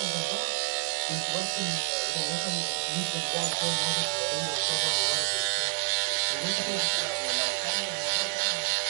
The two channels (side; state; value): left; silent; digital silence